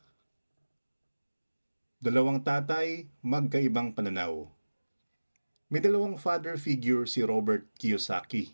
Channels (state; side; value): inverted; both; correlation -1.00